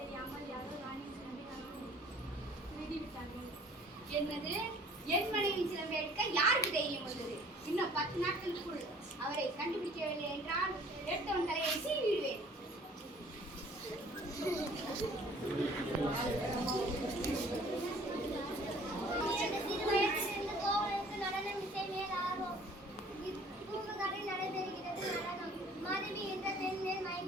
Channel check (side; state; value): both; normal; correlation 0.53